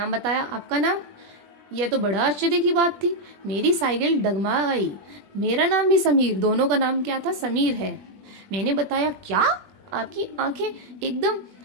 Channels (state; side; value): late; left; 20 ms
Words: बताया, आपका नाम? यह तो बड़ा आश्चर्य की बात थी, मेरी साइकिल डगमा गई। मेरा नाम भी समीर, दोनों का नाम क्या था? समीर है। मैंने बताया, क्या? आपकी आंखें एकदम